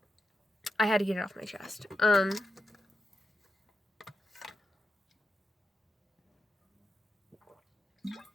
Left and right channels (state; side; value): normal; both; correlation 0.87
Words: I had to get it off my chest. On